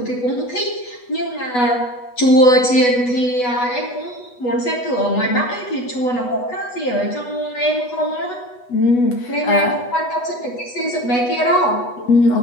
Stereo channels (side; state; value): right; late; 8.1 ms